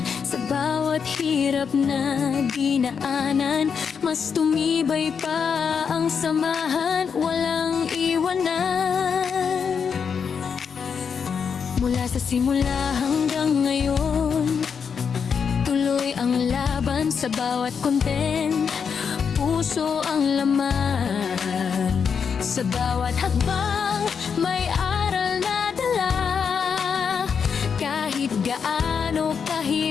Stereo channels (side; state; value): right; quieter; 6.5 dB